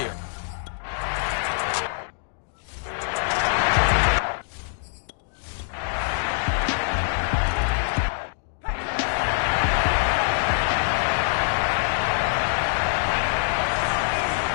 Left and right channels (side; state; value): right; silent; digital silence